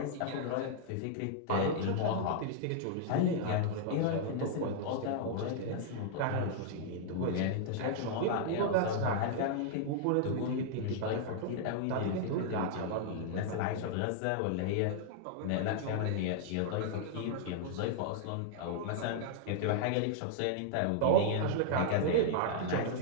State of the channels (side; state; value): both; different; correlation -0.01